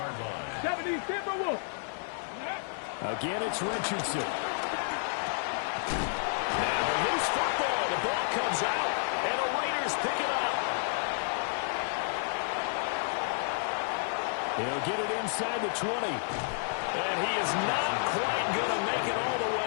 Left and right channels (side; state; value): right; silent; 57 dB below the other